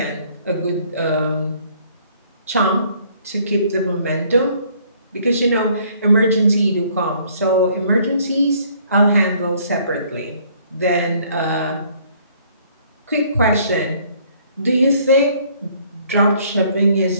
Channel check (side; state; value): both; inverted; correlation -0.61